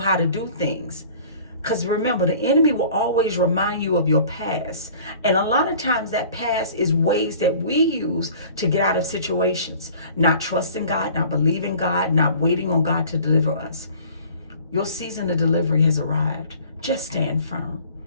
to do things. Because remember, the enemy will always remind you of your past. And a lot of times that past is ways that we use to get out of situations. Not trusting God, not believing God, not waiting on God to deliver us. Your season of delivery has arrived. Just stand firm.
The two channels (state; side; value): inverted; both; correlation -0.48